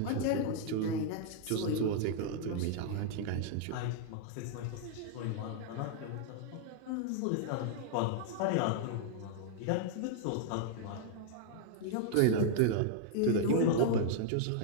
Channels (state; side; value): different; both; correlation -0.01